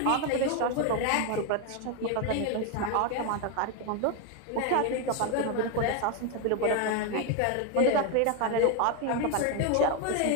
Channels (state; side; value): different; both; correlation 0.01